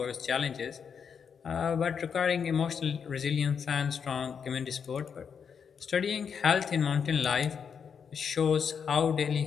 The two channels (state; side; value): quieter; right; 6.8 dB